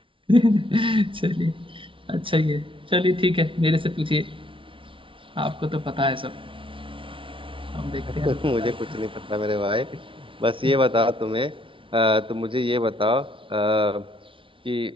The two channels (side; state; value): left; late; 0.25 ms